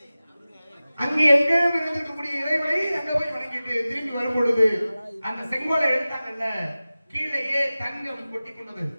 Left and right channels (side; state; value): both; inverted; correlation -0.96